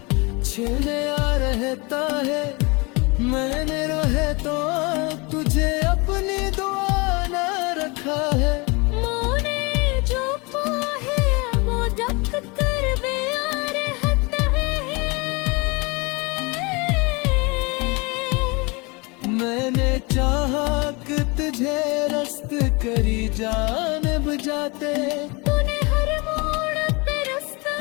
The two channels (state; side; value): quieter; right; 27.6 dB